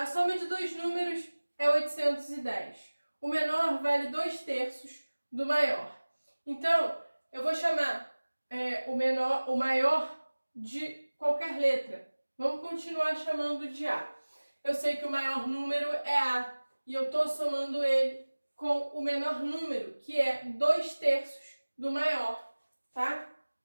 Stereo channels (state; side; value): inverted; both; correlation -1.00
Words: soma de dois números é 810. O menor vale 2/3 do maior. Então, eu vou chamar o maior de qualquer letra. Vamos continuar chamando de A. Eu sei que o maior número é A e eu estou somando ele com o menor número, que é 2/3 do maior, tá?